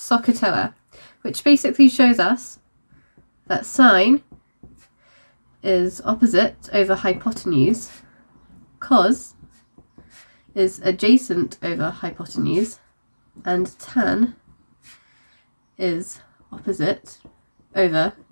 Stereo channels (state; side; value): inverted; both; correlation -1.00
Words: which basically shows us that sine is opposite over hypotenuse, cos is adjacent over hypotenuse, and tan is opposite over